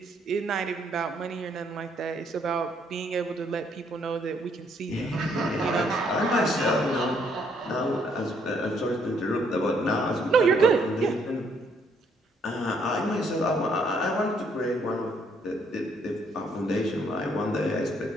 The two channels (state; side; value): normal; both; correlation 0.69